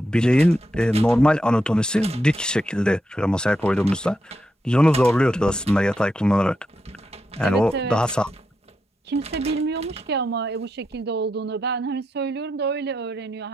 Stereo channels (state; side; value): normal; both; correlation 0.84